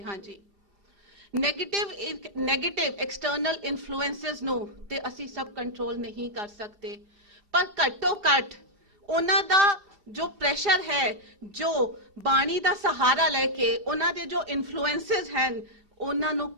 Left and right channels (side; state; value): left; late; 2.7 ms